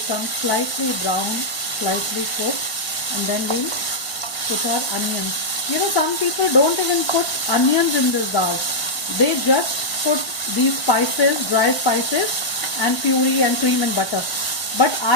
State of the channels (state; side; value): late; right; 1.3 ms